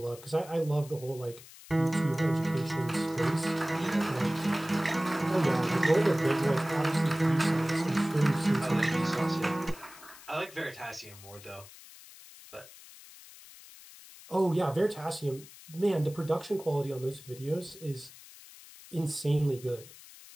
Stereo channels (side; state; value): left; noise; hiss, 19 dB below the sound